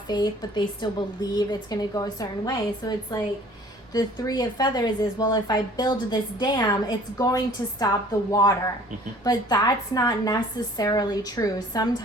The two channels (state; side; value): normal; both; correlation 0.51